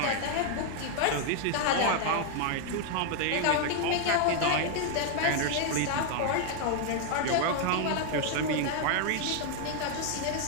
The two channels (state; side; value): different; both; correlation 0.00